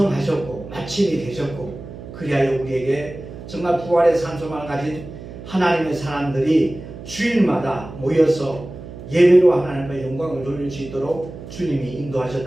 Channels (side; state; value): right; noise; hum, 13 dB below the sound